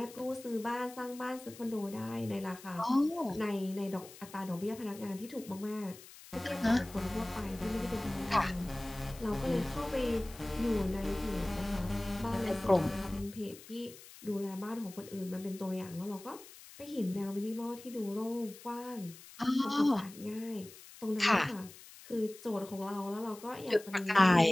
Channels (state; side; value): noise; left; hiss, 18 dB below the sound